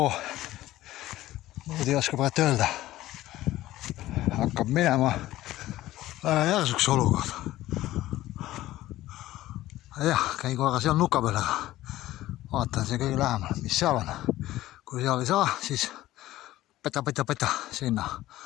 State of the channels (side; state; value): right; quieter; 15.5 dB